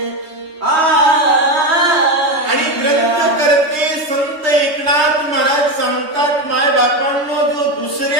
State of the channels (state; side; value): late; left; 3.2 ms